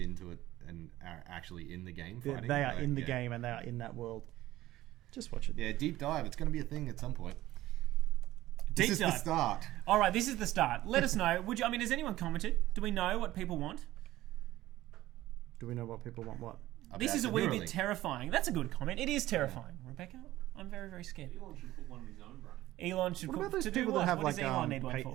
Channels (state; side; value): quieter; left; 15.7 dB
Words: it and are actually in the game They, fighting. they are Like, in the yeah. game and they are in that world. Just watch it. Yeah, deep dive. It's going to be a thing at some point. Deep This is dive. the start. All right, this is the start. Let us know. Would you? I mean, has anyone commented? Do we know what people want? Do we know what people want? What? This About is a the wee Neuralink. bit terrifying. That's a good comment. It is terrifying, Rebecca. I'm very, very scared. Elon should put one in his own brain. Elon should. What about those to do people what? that have What does like Elon need one for?